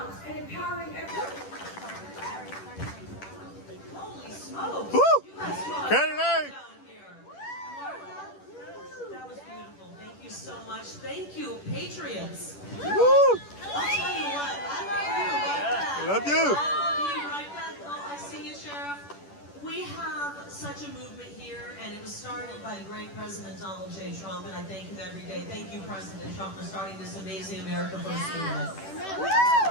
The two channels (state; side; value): late; right; 10 ms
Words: and empowering everyone. Holy smokes! Woo! You guys brought Kenny! down here. Martha, that was beautiful. Thank you so much. Thank you, Patriots. Woo! I'll tell you what, I love you right back. Love you. I love you right back. Oh, I see you, Sheriff. We have such a movement here, and it was started by the great President Donald J. Trump, and I thank him every day. Thank you, President Trump, for starting this amazing America First movement.